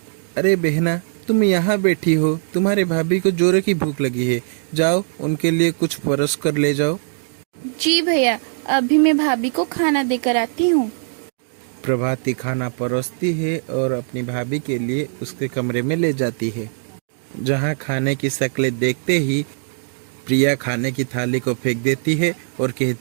अरे बहना, तुम यहाँ बैठी हो, तुम्हारे भाभी को जोरों की भूख लगी है, जाओ उनके लिए कुछ परोस कर ले जाओ। जी भैया, अभी मैं भाभी को खाना देकर आती हूँ। प्रभाती खाना परोसती है और अपनी भाभी के लिए उसके कमरे में ले जाती है, जहाँ खाने की शक्लें देखते ही प्रिया खाने की थाली को फेंक देती है और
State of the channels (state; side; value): silent; left; digital silence